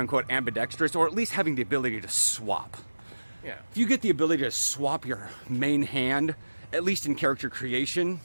ambidextrous, or at least having the ability to swap. Yeah. If you get the ability to swap your main hand, at least in character creation,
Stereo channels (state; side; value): inverted; both; correlation -1.00